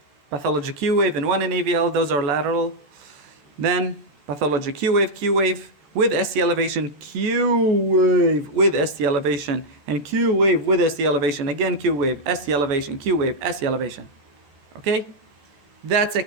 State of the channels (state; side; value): late; left; 14 ms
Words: pathology Q wave and one in AVL, those are lateral. Then pathology Q wave with ST elevation, Q wave with ST elevation, and Q wave with ST elevation, again Q wave, ST elevation, Q wave, ST elevation. Okay? That's